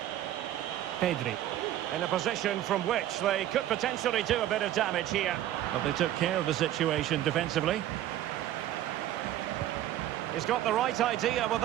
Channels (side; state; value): left; quieter; 12.8 dB